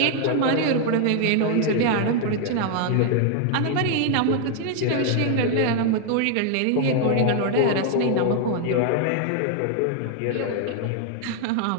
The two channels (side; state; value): both; different; correlation 0.00